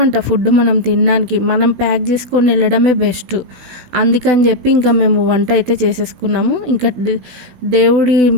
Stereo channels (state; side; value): late; left; 16 ms